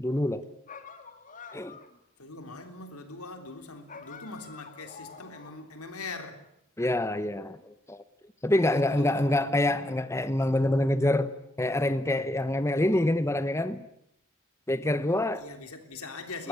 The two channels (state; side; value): normal; both; correlation 0.79